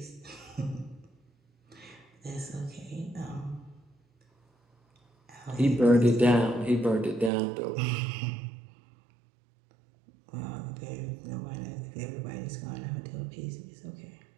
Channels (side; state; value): left; drops out; at 7.3 s